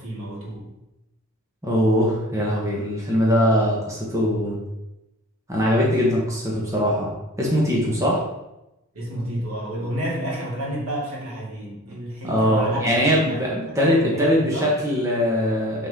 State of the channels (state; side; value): normal; both; correlation 0.44